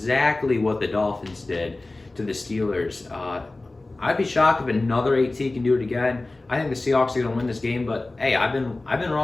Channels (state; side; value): quieter; right; 3.0 dB